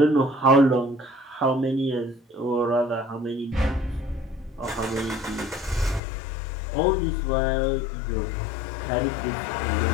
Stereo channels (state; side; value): drops out; right; at 6.0 s